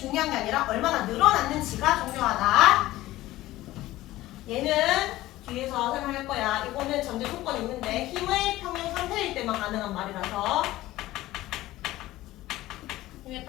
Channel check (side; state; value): right; quieter; 16.5 dB